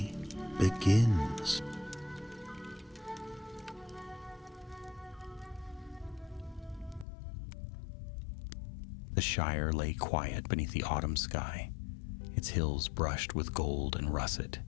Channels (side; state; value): right; drops out; at 7.1 s